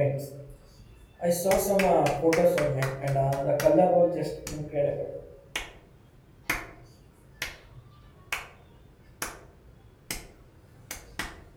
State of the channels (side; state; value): both; identical; correlation 1.00